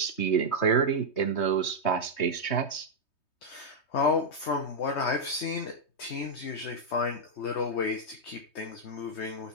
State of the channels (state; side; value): late; right; 3.2 ms